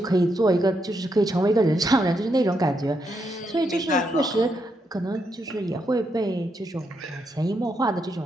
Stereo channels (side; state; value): both; normal; correlation 0.80